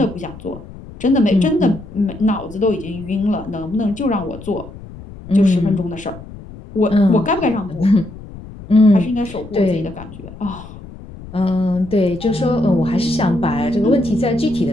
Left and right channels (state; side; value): noise; left; rumble, 16 dB below the sound